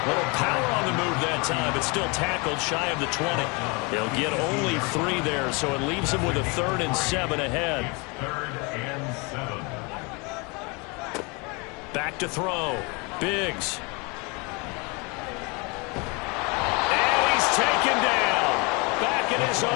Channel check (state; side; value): quieter; right; 29.5 dB